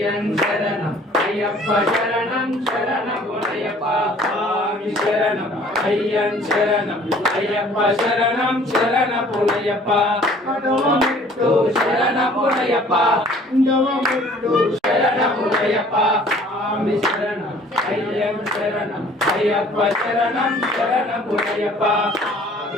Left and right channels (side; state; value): both; normal; correlation 0.54